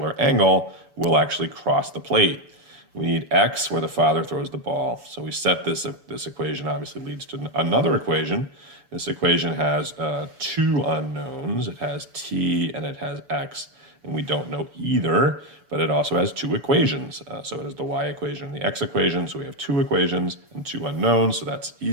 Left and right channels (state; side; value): late; left; 7.0 ms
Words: angle, will actually cross the plate. We need x where the father throws the ball. So we set this equation obviously leads to another equation. This equation has two unknowns. It has t and it has x, and we don't know either, but it also has two equations. So it has the y equation and the x equation. So we have two equations and two unknowns, so that's